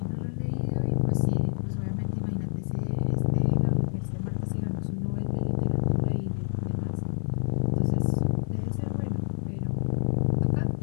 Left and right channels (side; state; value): right; silent; digital silence